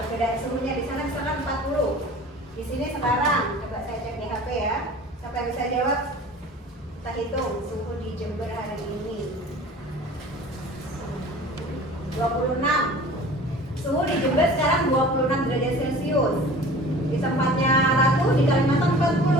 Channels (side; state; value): both; normal; correlation 0.43